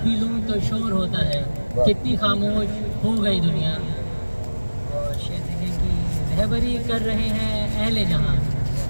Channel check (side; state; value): both; inverted; correlation -1.00